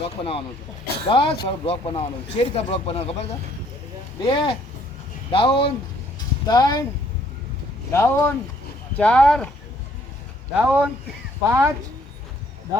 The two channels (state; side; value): normal; both; correlation 0.64